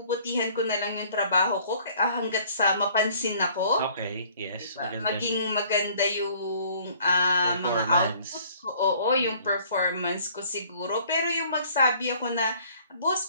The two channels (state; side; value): inverted; both; correlation -0.56